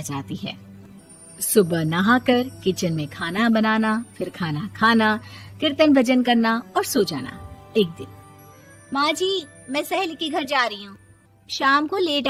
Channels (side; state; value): both; identical; correlation 1.00